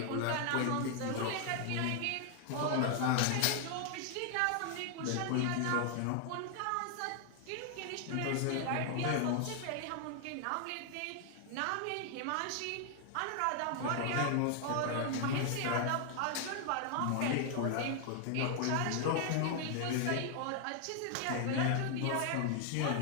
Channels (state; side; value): different; both; correlation 0.00